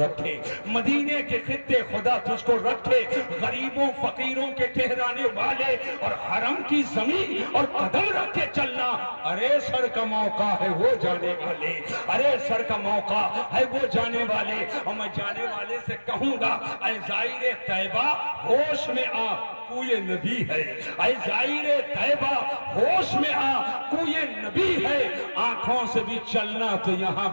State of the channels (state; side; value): inverted; both; correlation -1.00